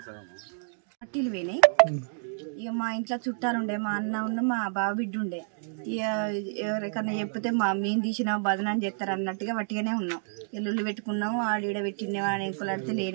పట్టీలు పోయినాయి. ఇక మా ఇంట్లో చుట్టాలు ఉండే, మా అన్న ఉండే, మా బావ బిడ్డ ఉండే. ఇక ఎవరికన్నా చెప్తే మేము తీసినాం బదనాన్ని చేస్తారు అన్నట్టుగా వట్టిగానే ఉన్నాం. ఎల్లుళ్ళు పెట్టుకున్నాం, ఆడీడ పెట్టిండే అని ఎంకులాడితే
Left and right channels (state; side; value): silent; left; digital silence